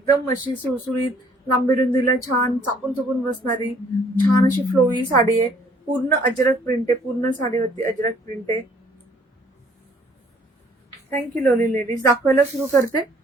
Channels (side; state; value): both; normal; correlation 0.60